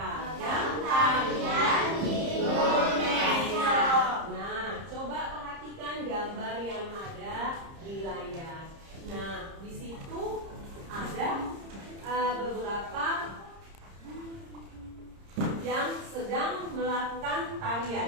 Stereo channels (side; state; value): left; late; 30 ms